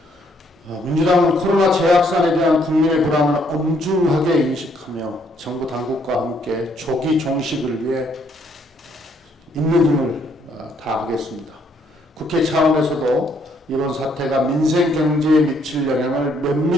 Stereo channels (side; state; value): both; normal; correlation 0.69